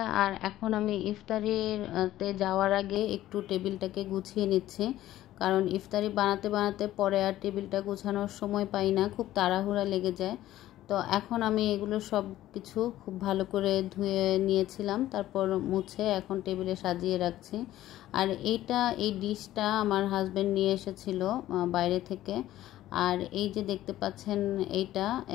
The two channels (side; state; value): right; quieter; 14.2 dB